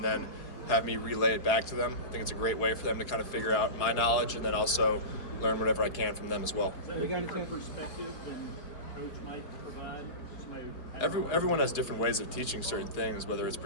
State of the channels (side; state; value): right; late; 4.5 ms